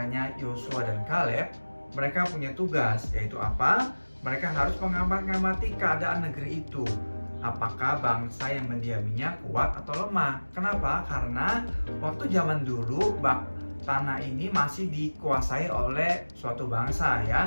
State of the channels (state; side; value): inverted; both; correlation -1.00